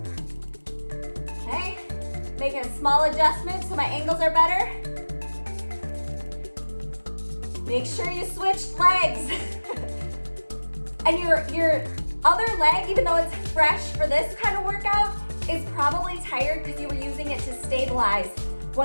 Okay, making a small adjustment so my angles are better. Make sure you switch legs. And your other leg, even though it's fresh for this kind of workout, is probably tired because you were using it to stabilize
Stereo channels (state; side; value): inverted; both; correlation -1.00